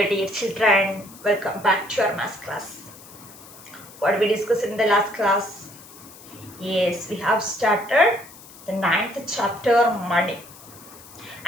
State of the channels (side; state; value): left; noise; hiss, 20 dB below the sound